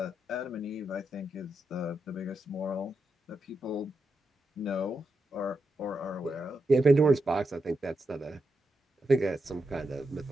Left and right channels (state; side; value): normal; both; correlation 0.86